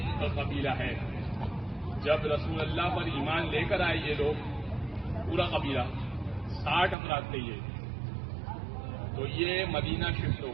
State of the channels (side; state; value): left; drops out; at 7.0 s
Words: قبیلہ ہے، جب رسول اللہ پر ایمان لے کر آئے یہ لوگ پورا قبیلہ 60 افراد تھے یہ، تو یہ مدینہ شفٹ ہو